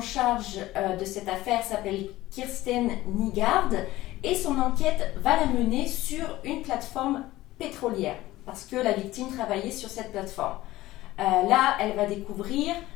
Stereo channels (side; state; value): right; quieter; 16.9 dB